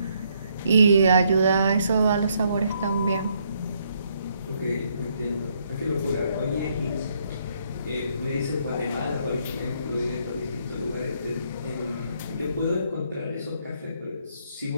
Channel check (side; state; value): both; inverted; correlation -0.71